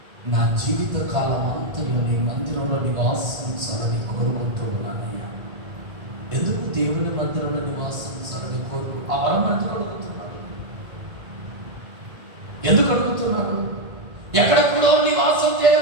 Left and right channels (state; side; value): late; left; 1.8 ms